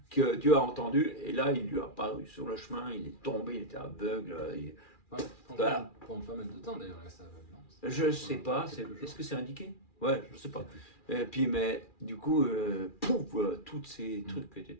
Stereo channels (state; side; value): late; right; 2.4 ms